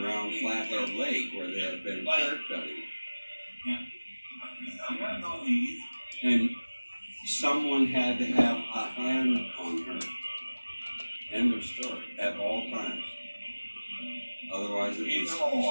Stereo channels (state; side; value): inverted; both; correlation -1.00